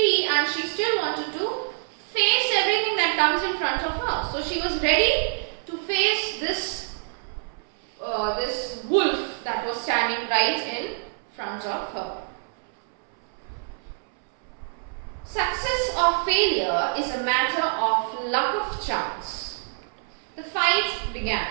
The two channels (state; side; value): silent; left; 61 dB below the other